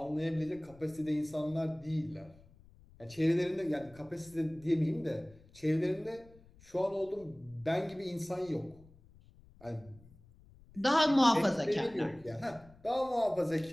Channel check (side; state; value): left; noise; rumble, 25 dB below the sound